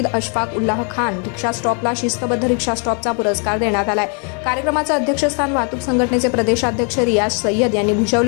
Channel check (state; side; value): quieter; right; 39.2 dB